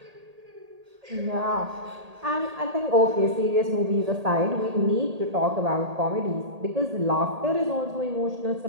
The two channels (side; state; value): left; late; 1.8 ms